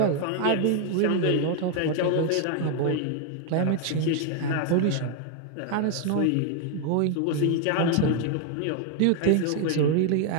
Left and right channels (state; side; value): different; both; correlation 0.00